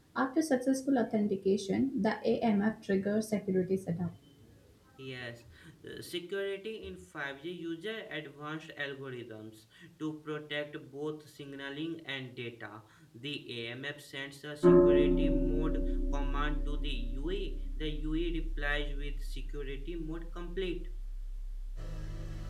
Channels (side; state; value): both; identical; correlation 1.00